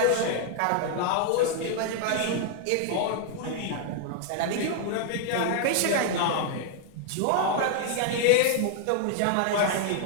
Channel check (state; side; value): different; both; correlation 0.00